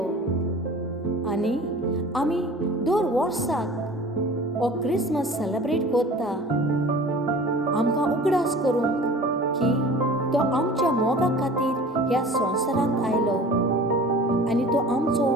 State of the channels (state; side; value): normal; both; correlation 0.42